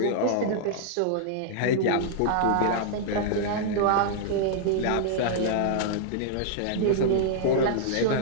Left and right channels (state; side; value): different; both; correlation -0.01